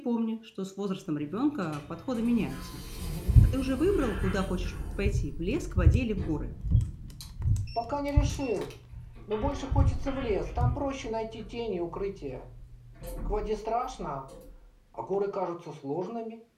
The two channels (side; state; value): both; identical; correlation 1.00